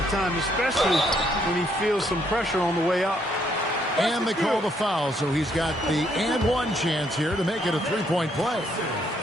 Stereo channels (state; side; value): normal; both; correlation 0.71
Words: time, especially when he feels some pressure on the way up. And they call the foul, so he's got the and one chance here to make it a three-point play.